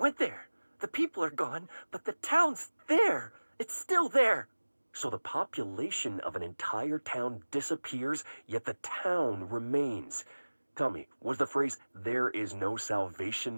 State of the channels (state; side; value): inverted; both; correlation -1.00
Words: there. The people are gone, but the town's there. It's still there. So the population of an entire town disappears, yet the town remains. Tell me, was the phrase, "there is no